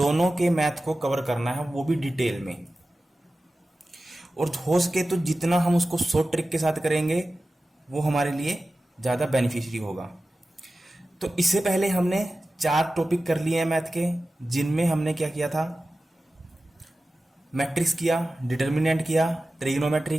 के मैथ को कवर करना है, वो भी डिटेल में, और हो सके तो जितना हम उसको शॉर्ट ट्रिक के साथ करेंगे वो हमारे लिए ज़्यादा बेनिफिशियरी होगा। तो इससे पहले हमने 4 टॉपिक कर लिए हैं मैथ के, जिनमें हमने क्या किया था, मैट्रिक्स किया, डिटर्मिनेंट किया, ट्रिग्नोमेट्री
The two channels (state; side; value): normal; both; correlation 0.95